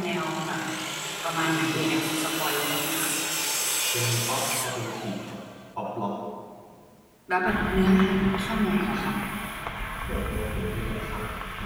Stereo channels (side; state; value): both; identical; correlation 1.00